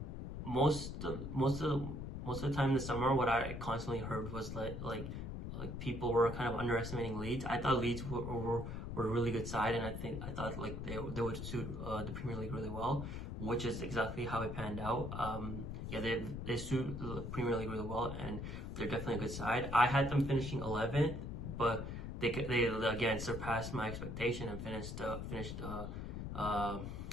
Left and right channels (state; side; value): noise; left; rumble, 6 dB below the sound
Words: most of the time this summer, what I constantly heard was like people were kind of underestimating Leeds. I thought Leeds were a really good side, and I thought like they would suit the Premier League really well, which is exactly how it panned out. Yeah, they suit the Premier League really well, and they're definitely a good side. I had them finishing 11th, but they again surpassed my expectation and finished